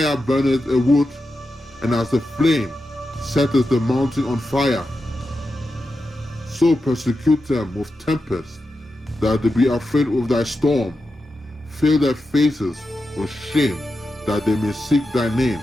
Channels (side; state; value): both; normal; correlation 0.89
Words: burneth a wood, and as the flame setteth the mountain on fire. So persecute them with tempest, that they be afraid with thy storm. Fill their faces with shame, that they may seek thy name,